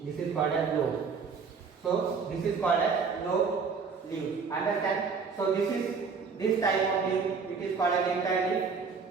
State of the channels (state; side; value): quieter; left; 5.3 dB